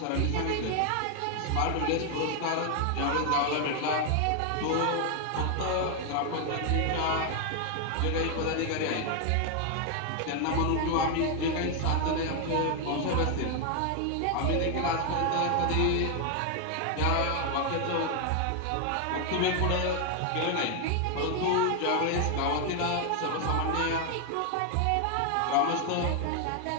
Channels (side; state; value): both; different; correlation 0.00